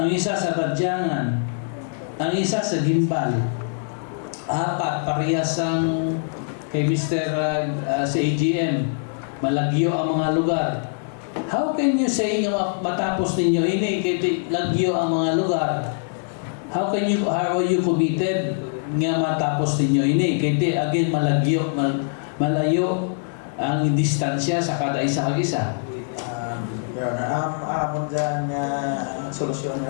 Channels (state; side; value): silent; right; digital silence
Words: isa sa Badyangan, ang isa sa Gimbal, 4 parehas ang kay Mr. Sa AGM, malagyo ang mga lugar. How can you say nga matapos ninyo ini kay lagyo ang mga lugar? How are you committed nga matapos ninyo ini? Kaya again, malayo ang distansya sa kada isa kag-isa. Your Honor, amon dyan nga solusyon